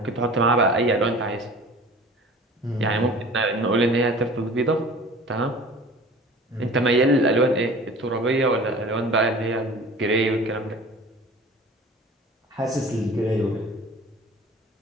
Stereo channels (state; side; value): normal; both; correlation 0.43